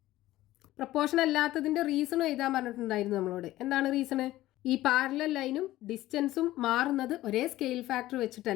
Proportion അല്ലാത്തതിൻ്റെ റീസണും എഴുതാൻ പറഞ്ഞിട്ടുണ്ടായിരുന്നു നമ്മളോട്. എന്താണ് റീസണ്? ഈ പാരലൽ ലൈനും ഡിസ്റ്റൻസും മാറുന്നത് ഒരേ സ്കെയിൽ ഫാക്ടർ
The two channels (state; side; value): quieter; right; 15.8 dB